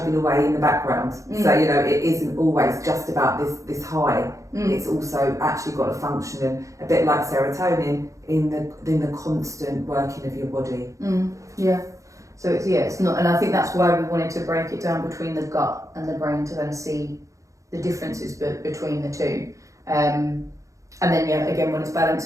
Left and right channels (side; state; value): left; late; 0.15 ms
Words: away in the background. So, it isn't always just about this high. It's also actually got a function, and a bit like serotonin in the constant working of your body. So it's not, and I think that's why we wanted to break it down between the gut and the brain to kind of see the differences between the two. And then again, when it's balanced,